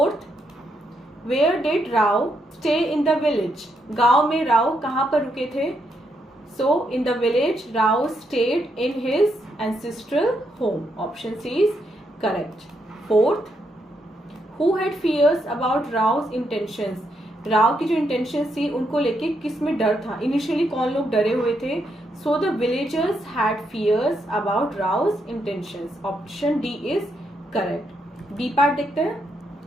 where did Rao stay in the village, गांव में राव कहाँ पर रुके थे? So in the village Rao stayed in his ancestral home, option C is correct. Fourth, who had fears about Rao's intentions, Rao की जो इंटेंशन थी उनको लेके किस में डर था? इनिशियली कौन लोग डरे हुए थे? So the villagers had fears about Rao's intentions, option D is correct. B part देखते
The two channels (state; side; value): normal; both; correlation 0.78